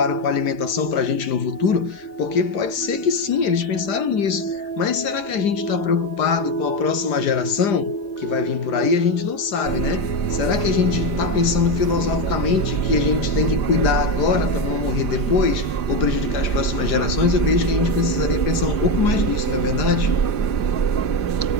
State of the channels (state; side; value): late; right; 5.0 ms